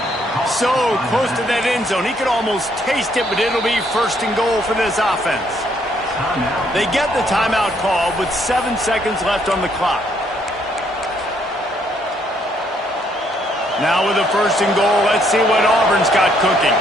So close to that end zone. He could almost taste it, but it'll be 1st and goal for this offense. They get the timeout call with 7 seconds left on the clock. Now with a 1st and goal, let's see what Auburn's got cooking.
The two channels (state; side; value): normal; both; correlation 0.70